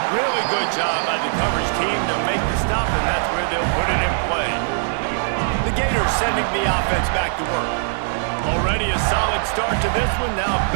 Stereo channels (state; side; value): silent; left; digital silence